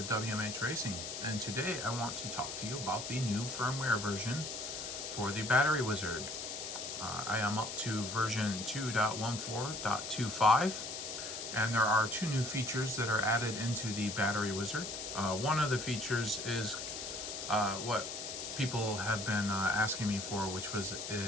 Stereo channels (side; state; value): left; noise; hiss, 6 dB below the sound